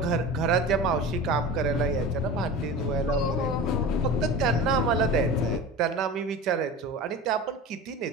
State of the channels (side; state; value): both; normal; correlation 0.33